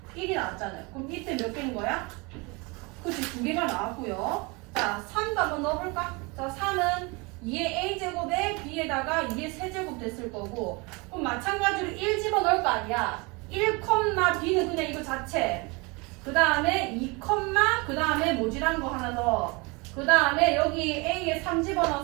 나왔잖아요. 그럼 밑에 몇 개인 거야? 그치, 2개가 나왔고요. 자, 3도 한번 넣어볼까? 자, 3은 2의 A제곱에 B에다가 2의 세제곱 됐을 거고, 그럼 마찬가지로 1 집어넣을 거 아니야. 1, B는 그냥 이거 자체. 그 다음에 2, 그 다음에 모질한 거 하나 더. 그 다음에 여기 A에 3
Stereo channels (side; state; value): left; quieter; 27.7 dB